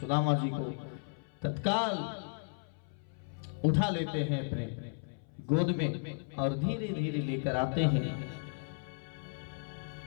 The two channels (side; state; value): right; silent; 55 dB below the other